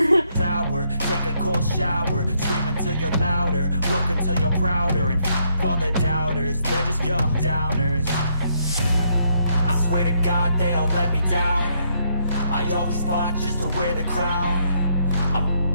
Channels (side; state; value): both; inverted; correlation -0.73